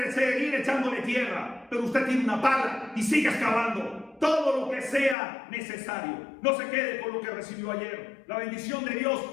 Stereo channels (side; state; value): right; drops out; at 5.2 s